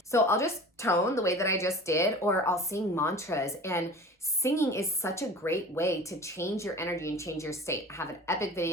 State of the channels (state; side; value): normal; both; correlation 0.39